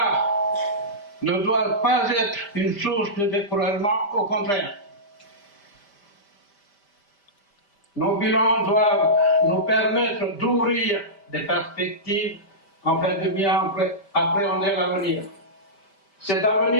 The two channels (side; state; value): right; late; 5.1 ms